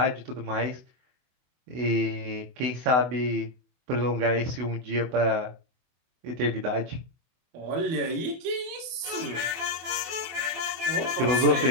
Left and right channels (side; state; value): left; late; 24 ms